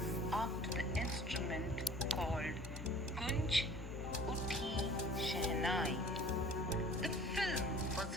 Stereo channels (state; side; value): normal; both; correlation 0.47